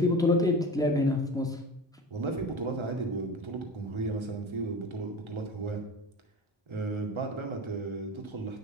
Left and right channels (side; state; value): both; normal; correlation 0.31